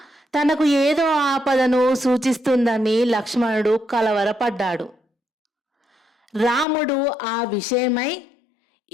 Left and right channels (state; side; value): drops out; right; at 6.7 s